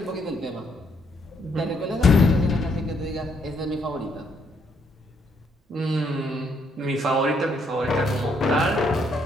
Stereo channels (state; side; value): normal; both; correlation 0.72